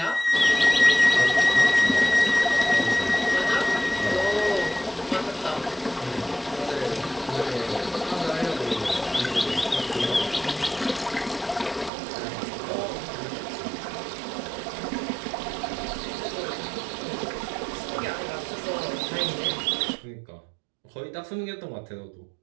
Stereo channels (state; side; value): drops out; left; at 11.9 s